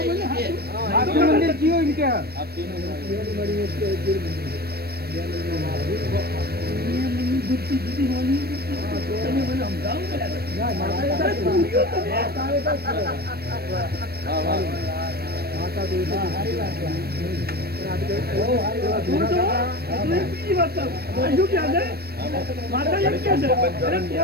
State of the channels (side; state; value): left; late; 0.46 ms